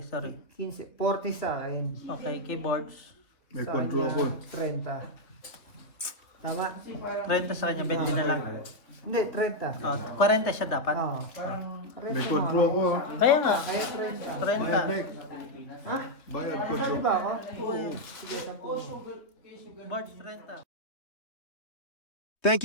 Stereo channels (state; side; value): late; right; 3.2 ms